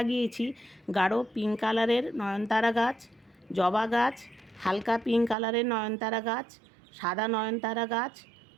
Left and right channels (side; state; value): left; drops out; at 5.4 s